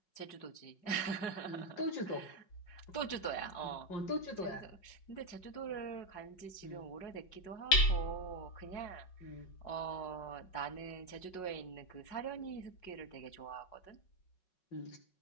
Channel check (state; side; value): late; right; 5.4 ms